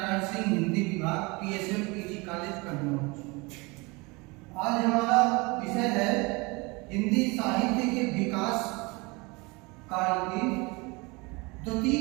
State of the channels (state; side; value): quieter; left; 26.2 dB